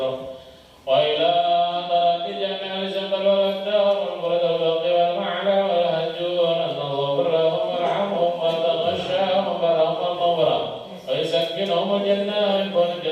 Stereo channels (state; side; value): identical; both; correlation 1.00